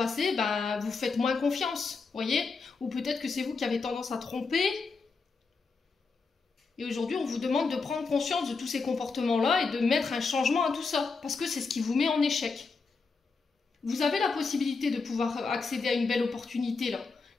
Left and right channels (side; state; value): right; quieter; 4.5 dB